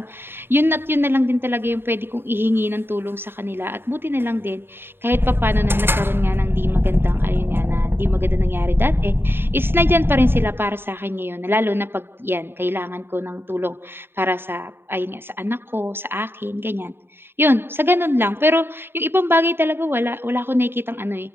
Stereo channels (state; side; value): late; left; 0.11 ms